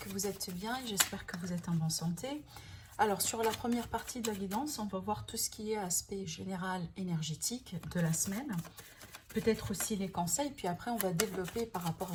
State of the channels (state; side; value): identical; both; correlation 1.00